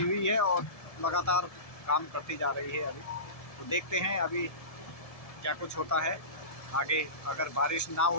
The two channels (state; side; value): late; right; 1.7 ms